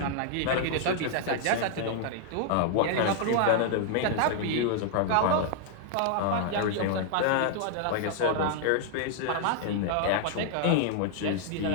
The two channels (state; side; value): different; both; correlation 0.00